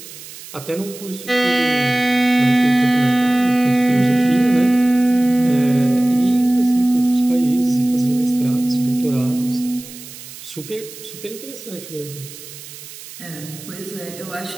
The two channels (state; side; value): noise; right; hiss, 15 dB below the sound